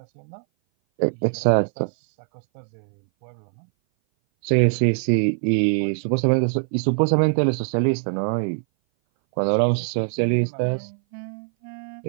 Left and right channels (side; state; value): left; silent; 59 dB below the other